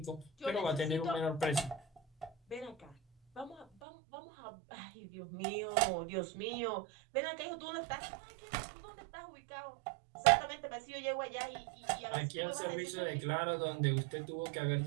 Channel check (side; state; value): left; drops out; at 3.7 s